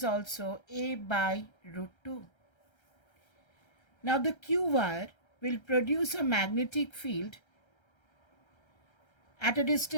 also A by root 2. Now the Q wire will produce a magnetic field at a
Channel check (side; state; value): right; late; 1.3 ms